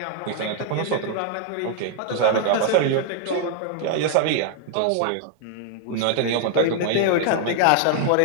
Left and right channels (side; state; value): both; different; correlation -0.01